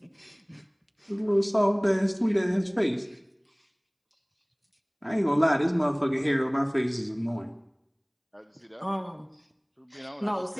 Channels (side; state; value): both; identical; correlation 1.00